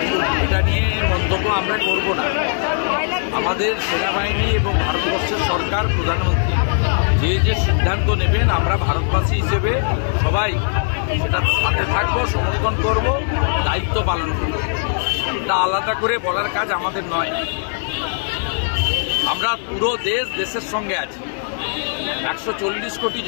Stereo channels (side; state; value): right; silent; digital silence